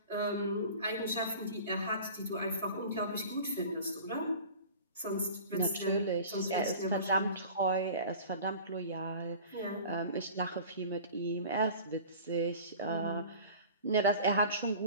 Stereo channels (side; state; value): both; inverted; correlation -0.41